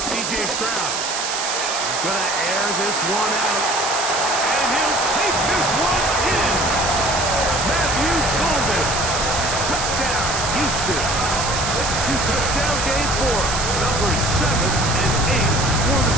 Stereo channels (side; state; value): right; noise; hiss, 3 dB below the sound